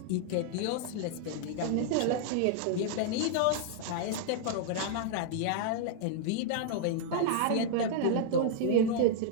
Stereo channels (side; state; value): both; different; correlation -0.01